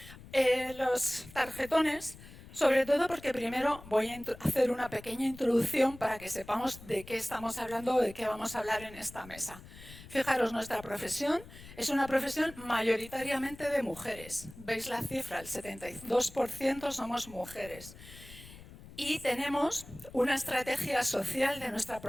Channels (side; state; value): left; noise; rumble, 18 dB below the sound